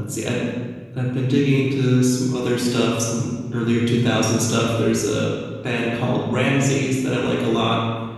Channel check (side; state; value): both; identical; correlation 1.00